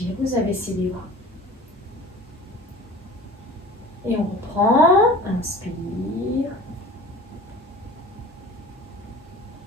vous abaissez les bras. Et on reprend. Inspire.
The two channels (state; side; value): normal; both; correlation 0.41